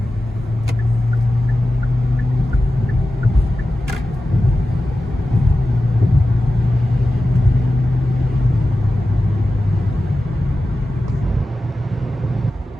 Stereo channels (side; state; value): both; normal; correlation 0.93